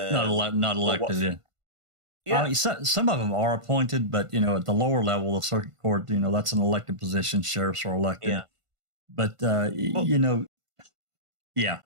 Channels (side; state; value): left; late; 1.5 ms